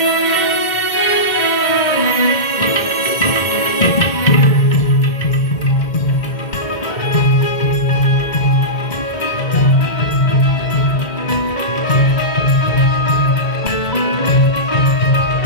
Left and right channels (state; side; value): late; right; 2.2 ms